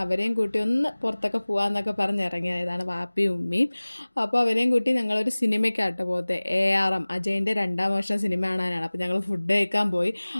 അവരെയും കൂട്ടി ഒന്ന് പുറത്തൊക്കെ പോകാമെന്നൊക്കെ പറഞ്ഞ് ഇറങ്ങിയതാണ് വാപ്പിയും ഉമ്മയും. അപ്പോൾ അവരെയും കൂട്ടി ഞങ്ങളൊരു സിനിമയ്ക്കാട്ടോ പോകത്തെ. ARM അജയൻ്റെ 2ാം വർഷം സിനിമ കാണാനാണ്. അപ്പോൾ ഞങ്ങൾ ഫുഡ് കഴിക്കാൻ പോയി.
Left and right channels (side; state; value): both; inverted; correlation -1.00